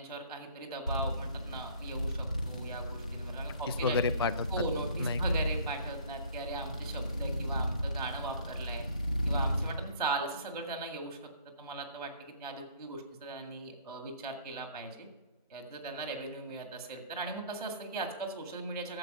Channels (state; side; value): inverted; both; correlation -0.54